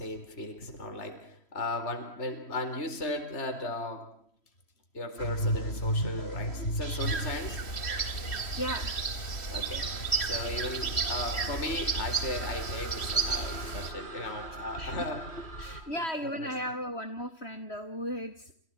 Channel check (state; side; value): late; right; 3.1 ms